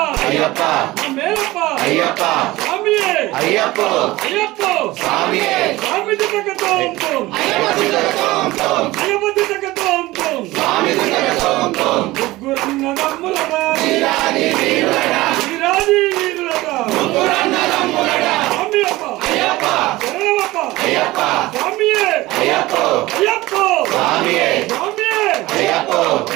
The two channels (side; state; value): left; quieter; 18.9 dB